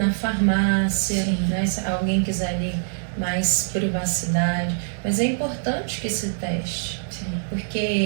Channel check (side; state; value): left; silent; digital silence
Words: farmácia, né? Se alguém quiser ali mais privacidade. Mas é importante que se teste. Sim.